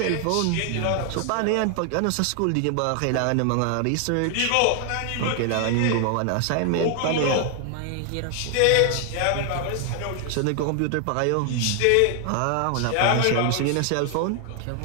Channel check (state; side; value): different; both; correlation 0.00